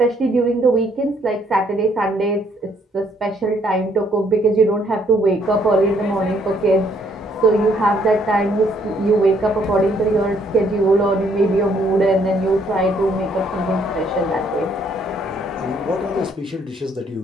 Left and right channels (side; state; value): both; normal; correlation 0.67